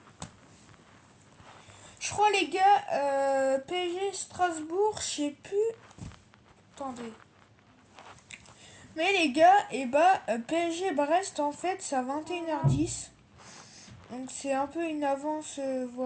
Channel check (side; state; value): both; identical; correlation 1.00